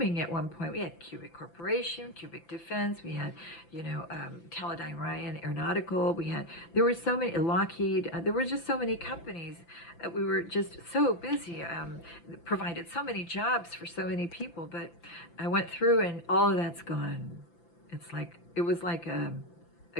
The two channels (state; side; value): late; right; 5.9 ms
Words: at one point. We had Cubic Corporation, Cubic Defense. We had, Teledyne Ryan Aeronautical. There were so many, Lockheed. There were just so many companies. We were just so busy. Provided so many jobs for so many people. But I went through and all of that's gone. It was like a